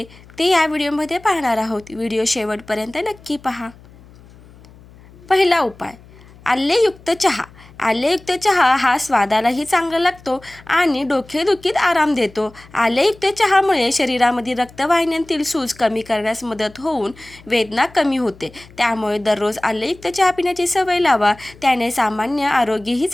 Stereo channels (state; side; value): noise; left; hum, 23 dB below the sound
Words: ते या व्हिडिओमध्ये पाहणार आहोत. व्हिडिओ शेवटपर्यंत नक्की पहा. पहिला उपाय, आलेयुक्त चहा. आलेयुक्त चहा हा स्वादालाही चांगला लागतो आणि डोकेदुखीत आराम देतो. आलेयुक्त चहामुळे शरीरामध्ये रक्तवाहिन्यांतील सूज कमी करण्यास मदत होऊन वेदना कमी होते. त्यामुळे दररोज आलेयुक्त चहा पिण्याची सवय लावा. त्याने सामान्य आरोग्यही